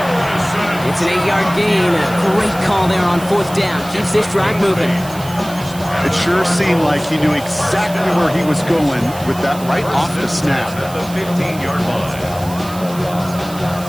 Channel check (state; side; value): noise; right; hiss, 16 dB below the sound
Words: It's an 8-yard gain. A great call there on fourth down. Keeps this drive moving. It sure seemed like he knew exactly where he was going with that right off the snap. At the 15-yard line.